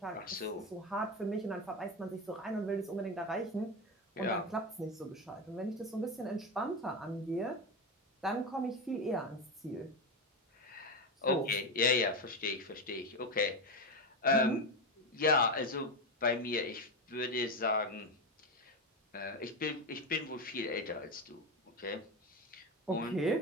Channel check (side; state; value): both; normal; correlation 0.15